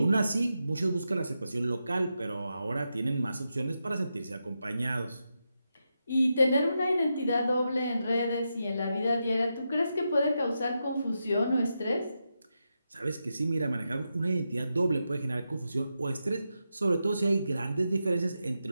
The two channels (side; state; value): both; inverted; correlation -0.87